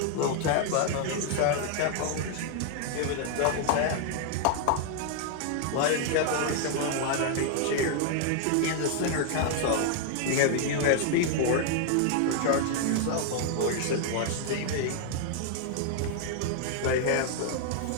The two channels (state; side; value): different; both; correlation 0.00